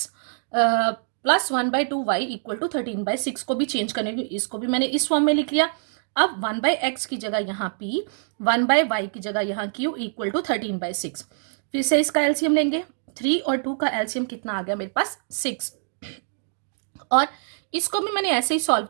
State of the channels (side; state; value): left; silent; digital silence